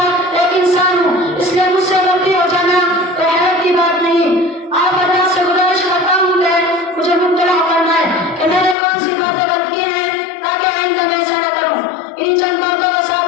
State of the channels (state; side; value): drops out; right; at 8.8 s